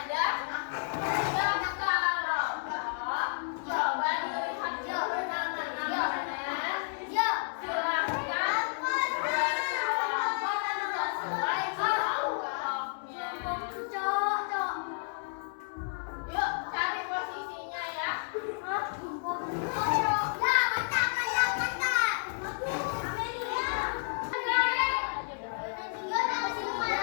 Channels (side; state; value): right; silent; digital silence